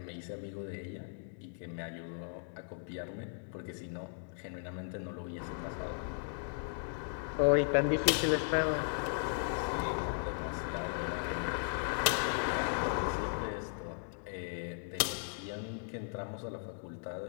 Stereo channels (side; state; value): right; silent; digital silence